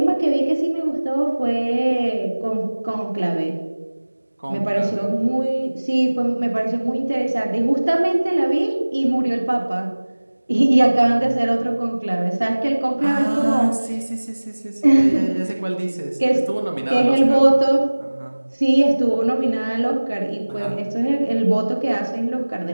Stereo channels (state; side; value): inverted; both; correlation -1.00